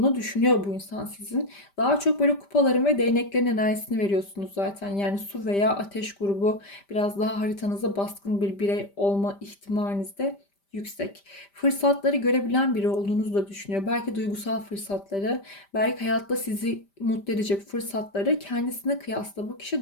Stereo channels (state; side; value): late; right; 5.1 ms